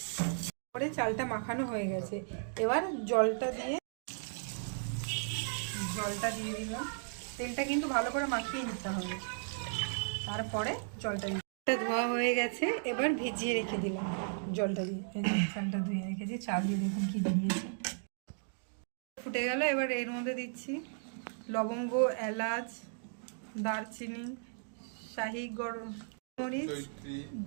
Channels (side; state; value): left; silent; digital silence